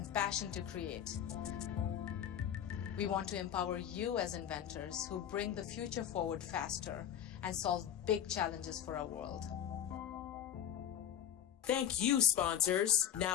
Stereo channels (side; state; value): right; quieter; 9.9 dB